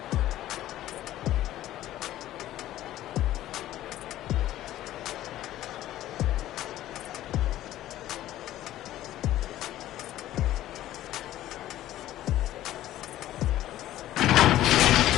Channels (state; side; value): quieter; right; 13.9 dB